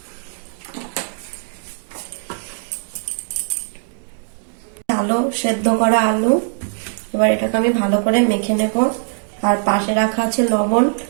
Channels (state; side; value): silent; left; digital silence